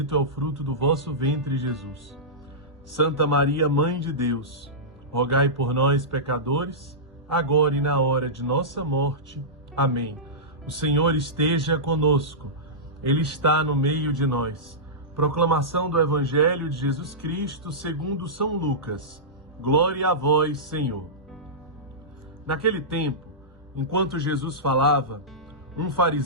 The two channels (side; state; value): both; normal; correlation -0.16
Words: é o fruto do vosso ventre, Jesus. Santa Maria, Mãe de Deus, rogai por nós, pecadores, agora e na hora de nossa morte. Amém. O Senhor esteja conosco. Ele está no meio de nós. Proclamação do Evangelho de Jesus Cristo segundo São Lucas. Glória a vós, Senhor. Naquele tempo, enquanto Jesus falava, um